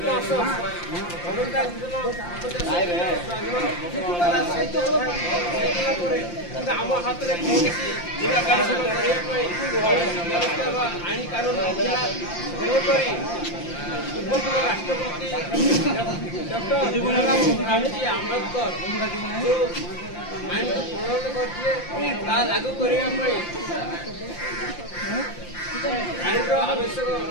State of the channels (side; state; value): right; late; 5.8 ms